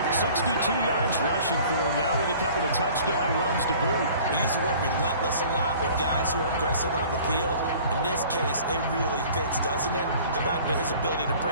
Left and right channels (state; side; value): inverted; both; correlation -0.48